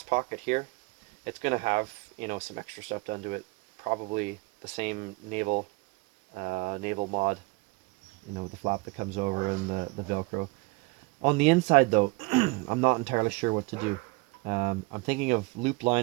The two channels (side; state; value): left; quieter; 25.9 dB